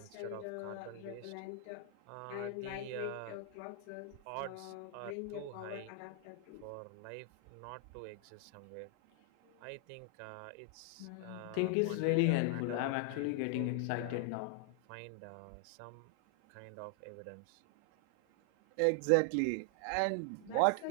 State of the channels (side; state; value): both; different; correlation 0.00